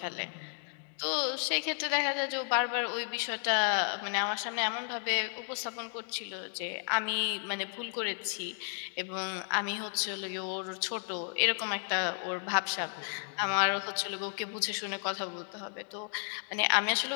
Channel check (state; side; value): silent; right; 56 dB below the other